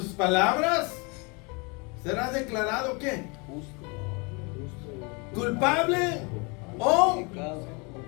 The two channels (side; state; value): right; quieter; 30.5 dB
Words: palabras serás declarado ¿qué? Culpable o